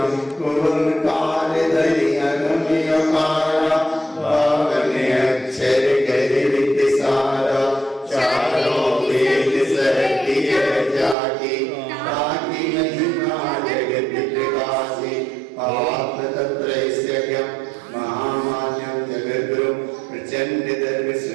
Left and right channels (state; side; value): drops out; left; at 11.2 s